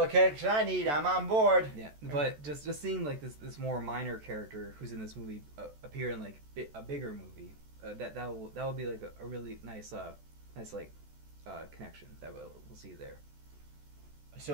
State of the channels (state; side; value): late; left; 14 ms